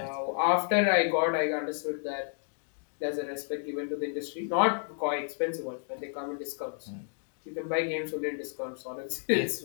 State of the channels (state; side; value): silent; right; 57 dB below the other